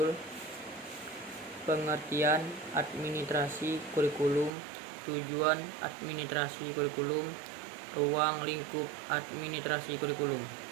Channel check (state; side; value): drops out; left; at 4.5 s